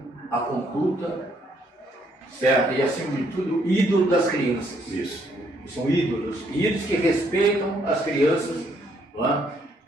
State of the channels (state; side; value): normal; both; correlation 0.70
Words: a conduta, certo? E acima de tudo, ídolo das crianças. Isso. São ídolos que respeitam as crianças. Não é?